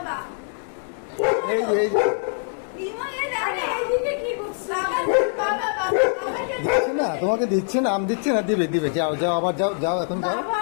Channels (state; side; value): silent; right; 59 dB below the other